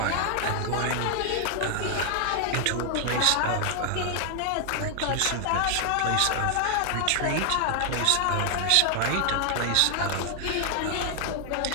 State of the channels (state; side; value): different; both; correlation 0.00